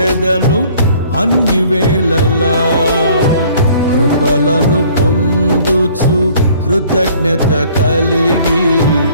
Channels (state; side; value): inverted; both; correlation -0.56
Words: అన్ని వేళలా. కృపలను పొందుచు కృతజ్ఞత కలిగి